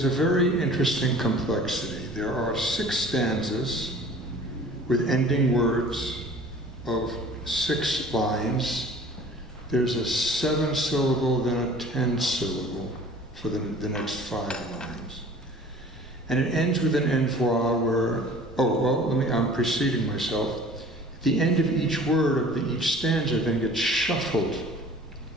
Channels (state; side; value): normal; both; correlation 0.47